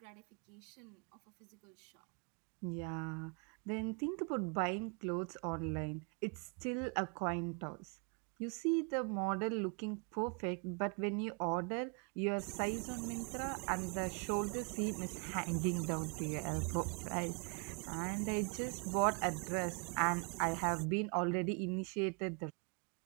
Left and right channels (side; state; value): left; quieter; 36.3 dB